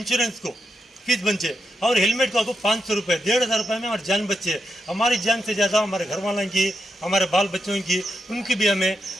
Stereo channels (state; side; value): normal; both; correlation 0.84